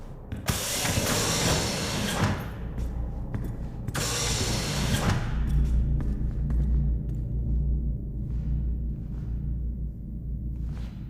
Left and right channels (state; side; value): identical; both; correlation 1.00